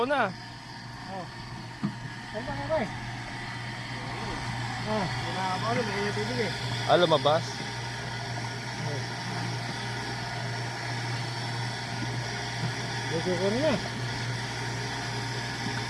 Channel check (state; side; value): identical; both; correlation 1.00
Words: na. Saan ba nga ba eh? Umapaw na, may tubig eh. Lumabas. Gusto ko na.